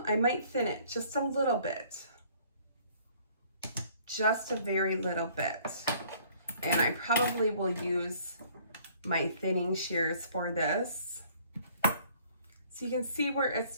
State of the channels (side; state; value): both; inverted; correlation -0.58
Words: might thin it just a little bit. Just a very little bit. And I probably will use my thinning shears for this. So you can see where it's